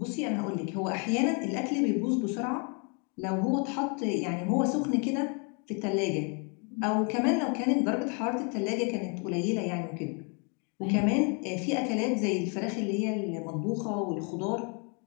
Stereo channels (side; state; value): right; quieter; 36.5 dB